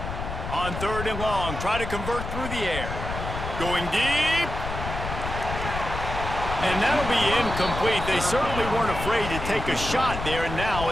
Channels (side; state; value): left; noise; rumble, 6 dB below the sound